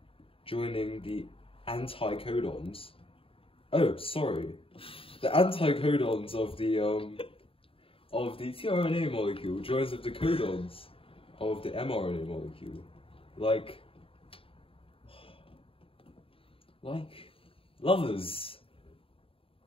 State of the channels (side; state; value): right; late; 0.27 ms